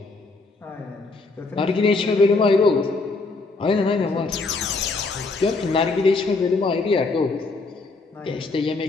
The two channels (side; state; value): right; quieter; 3.7 dB